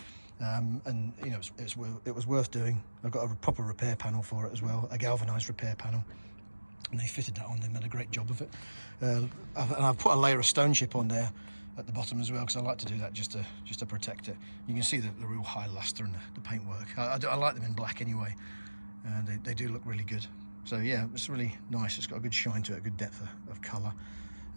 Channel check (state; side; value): inverted; both; correlation -1.00